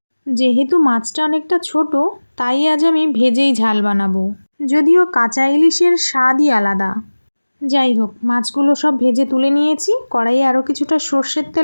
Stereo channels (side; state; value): both; inverted; correlation -1.00